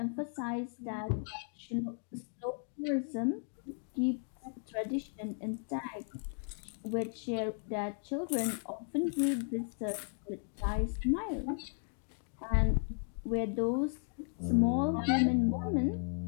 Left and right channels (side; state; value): right; silent; 54 dB below the other